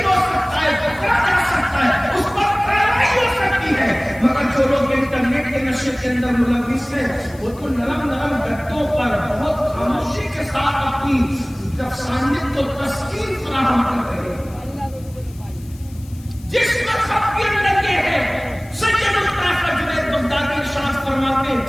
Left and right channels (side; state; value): left; noise; hiss, 24 dB below the sound